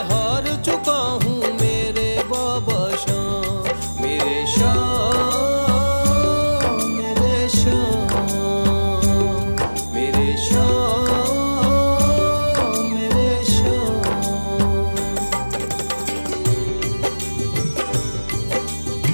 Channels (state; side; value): inverted; both; correlation -1.00